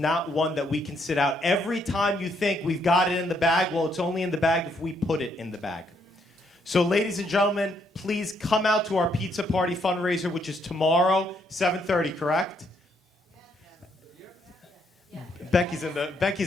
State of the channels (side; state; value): both; normal; correlation 0.73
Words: one that we can sit out. Every time you think we've got it in the bag, well, it's only in the bag if we put it in the bag. So, ladies and gentlemen, please come out to our pizza party fundraiser, which is tomorrow, 7:30, correct? Becky's in